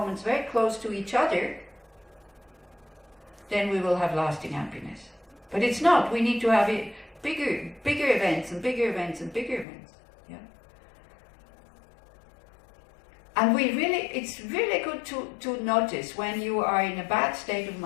very close to each other, then we will have lasting happiness. But it's not. We need to have it bigger events and bigger events and bigger events. Yeah. And it's really good to notice when you are in a bad state of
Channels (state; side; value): drops out; right; at 9.7 s